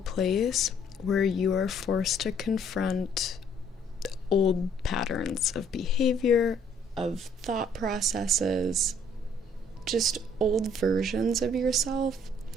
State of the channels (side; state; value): both; normal; correlation 0.62